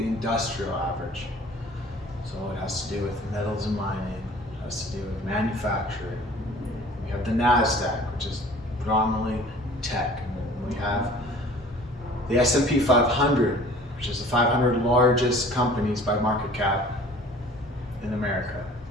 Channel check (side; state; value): both; normal; correlation 0.48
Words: average. So it has to do with metals and mining, it has to do with manufacturing. We have the NASDAQ, which is predominantly tech. And we have the S&P 500, which is the 500 largest companies by market cap in America.